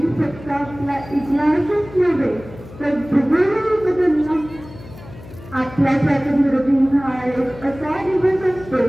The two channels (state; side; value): noise; left; hum, 17 dB below the sound